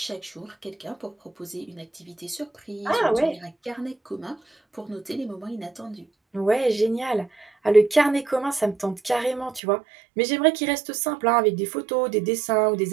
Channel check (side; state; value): left; drops out; at 9.6 s